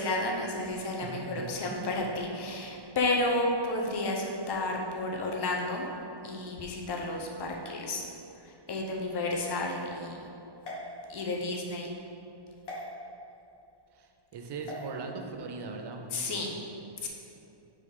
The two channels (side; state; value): left; late; 1.1 ms